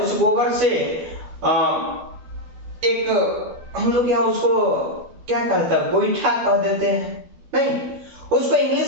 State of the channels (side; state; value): left; late; 12 ms